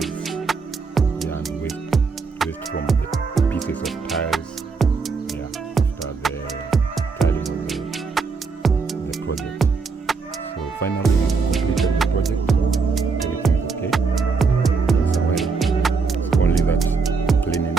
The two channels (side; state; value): left; quieter; 4.8 dB